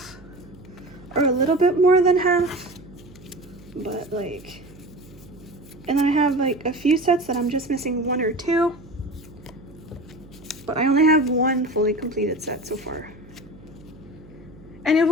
or a little bit more than half, but like, and then I have like a few sets that I'm just missing 1 or 2, but I only have 1 fully completed set so far, and it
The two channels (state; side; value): noise; right; hum, 21 dB below the sound